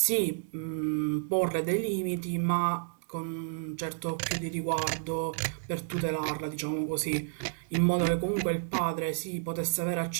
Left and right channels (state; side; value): silent; left; digital silence